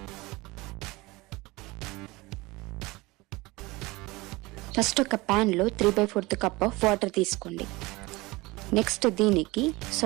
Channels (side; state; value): left; quieter; 22.0 dB